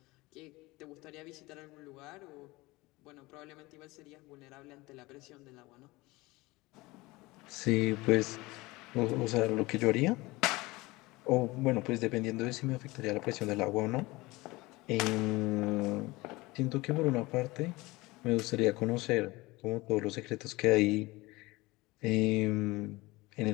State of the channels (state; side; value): quieter; right; 21.6 dB